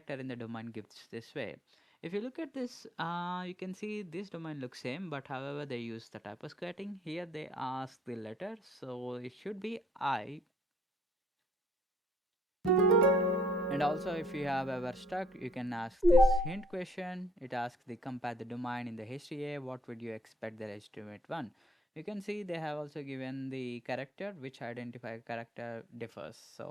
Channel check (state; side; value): normal; both; correlation 0.61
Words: in the domain gives this way? If you look at this, you can see this domain looks same, but however they use the typo squatting. Here they ask the letter, so it should be I. And also, if you have ever stuck, you can ask this hint question. It asks the compare the domain in the HTA. What would you expect the legitimate one? You can see they have also given the character which identify character differs.